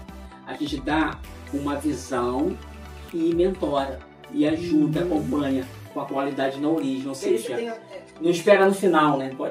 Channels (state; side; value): identical; both; correlation 1.00